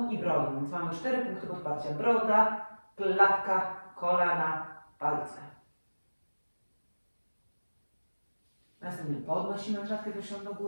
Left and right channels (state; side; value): inverted; both; correlation -1.00